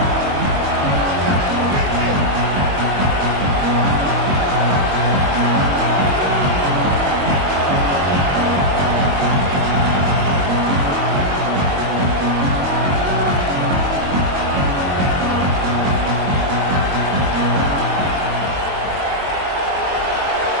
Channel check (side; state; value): left; late; 22 ms